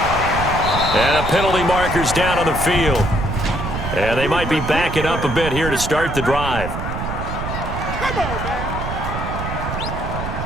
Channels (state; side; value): noise; right; rumble, 5 dB below the sound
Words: And a penalty marker's down on the field. And they might be backing up a bit here to start the drive.